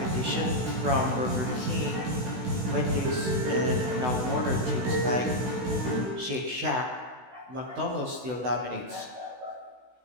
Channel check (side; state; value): left; late; 16 ms